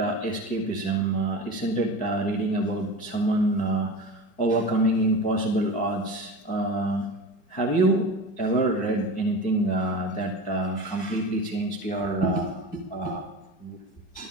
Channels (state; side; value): late; right; 4.6 ms